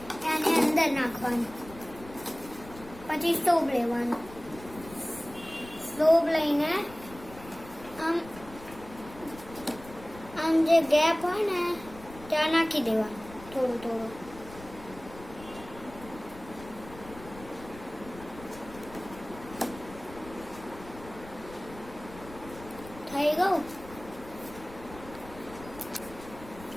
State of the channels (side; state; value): left; noise; rumble, 17 dB below the sound